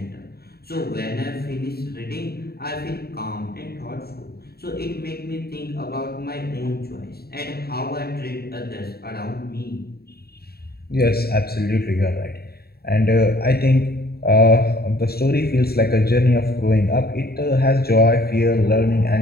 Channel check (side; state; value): right; late; 0.45 ms